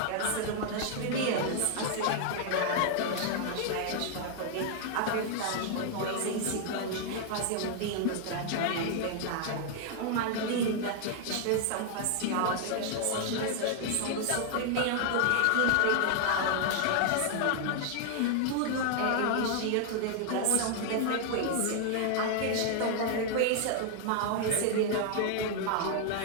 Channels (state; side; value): different; both; correlation 0.00